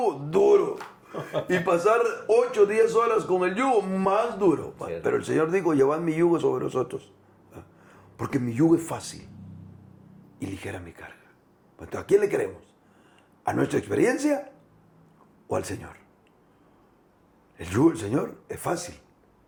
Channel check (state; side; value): identical; both; correlation 1.00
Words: Duro. Y pasar 8 o 10 horas con el yugo, más duro. Cierto. Pero el Señor dijo, llevad mi yugo sobre vosotros. Porque mi yugo es fácil y ligera mi carga. Entonces, ¿a quién le queremos? ¿A nuestra experiencia o al Señor? El yugo del Señor es fácil